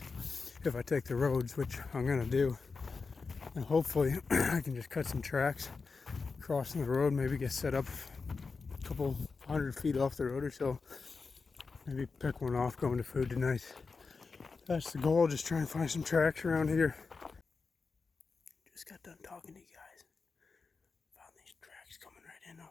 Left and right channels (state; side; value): quieter; right; 4.6 dB